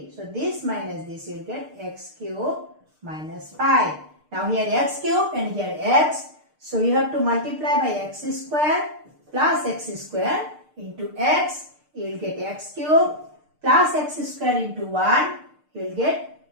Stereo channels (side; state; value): left; late; 6.6 ms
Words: So this minus this, you will get x cube minus 5. Now here x cube and here x. So you have to multiply by x square plus x square into x. You will get x cube plus x square into 1. You will get